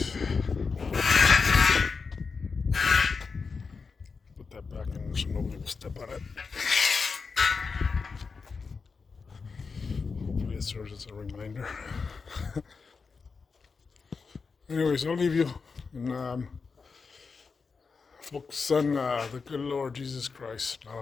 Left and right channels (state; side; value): quieter; right; 4.9 dB